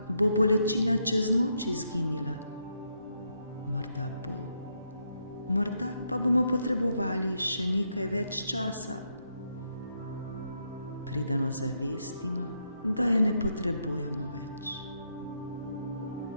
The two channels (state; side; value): inverted; both; correlation -0.78